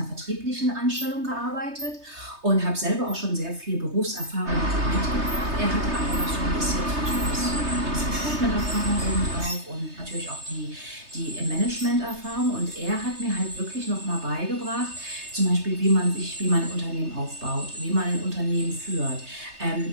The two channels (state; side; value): late; left; 3.3 ms